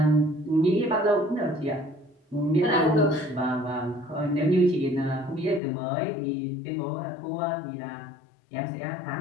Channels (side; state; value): right; drops out; at 5.6 s